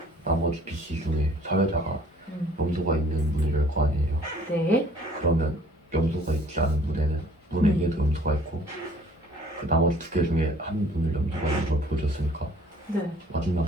나머지 B, C 중에 사회자가 염소가 있는 문을 열 거 아니에요. 네. 그러면 염소가 있지 않은 문에는 문 A에도 염소가 있고 그 나머지 두 개 중에 한 문을 염소가 있는 걸 보여줬으니까 네.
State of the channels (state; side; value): normal; both; correlation 0.55